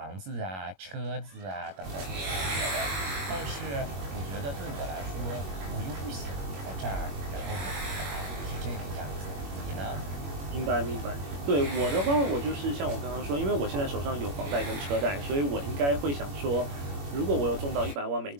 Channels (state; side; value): late; left; 21 ms